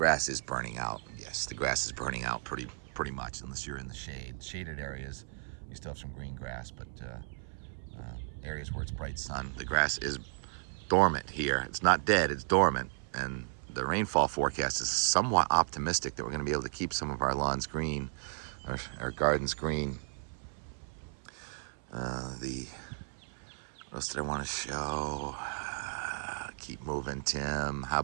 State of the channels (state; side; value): silent; left; 55 dB below the other